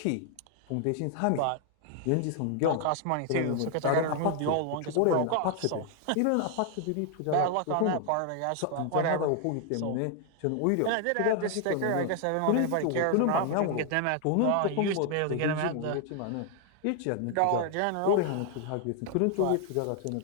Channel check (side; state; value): both; different; correlation 0.00